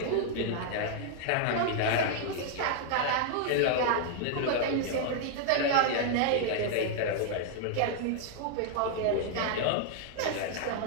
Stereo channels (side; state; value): both; different; correlation 0.00